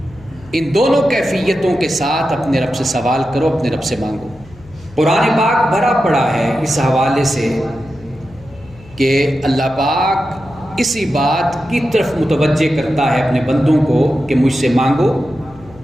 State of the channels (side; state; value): left; noise; hum, 22 dB below the sound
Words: ان دونوں کیفیتوں کے ساتھ اپنے رب سے سوال کرو، اپنے رب سے مانگو۔ قرآن پاک بھرا پڑا ہے اس حوالے سے کہ اللہ پاک اسی بات کی طرف متوجہ کرتا ہے اپنے بندوں کو کہ مجھ سے مانگو۔